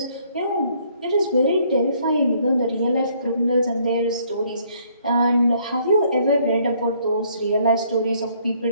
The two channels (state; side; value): inverted; both; correlation -0.65